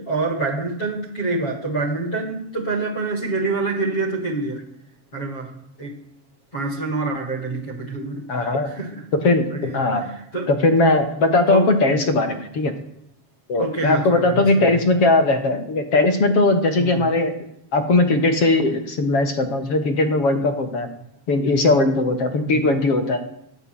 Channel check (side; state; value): right; late; 7.3 ms